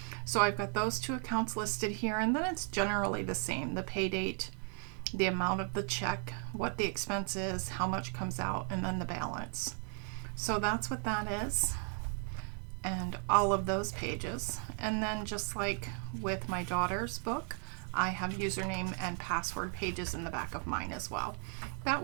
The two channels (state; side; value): quieter; left; 37.6 dB